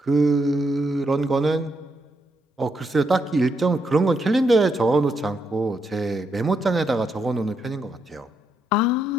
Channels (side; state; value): both; normal; correlation 0.79